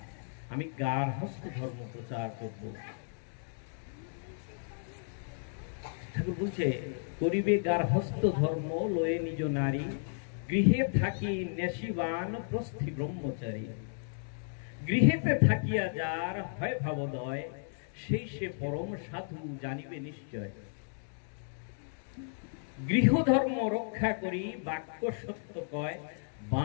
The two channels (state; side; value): silent; right; digital silence